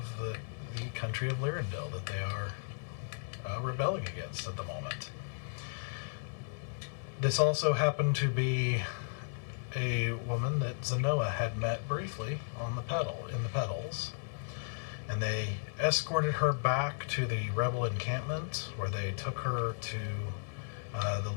the country of Lyrindil that they are rebelling against at the moment. This also happened to be a woman that Zenoa had met briefly in the Petals, and they escorted her back to the rebel encampment, where they took her to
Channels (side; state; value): right; silent; digital silence